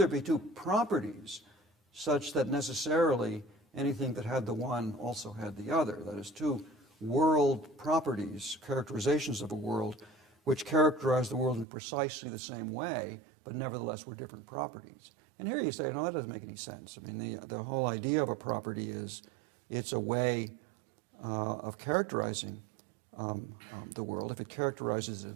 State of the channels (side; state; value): left; drops out; at 11.7 s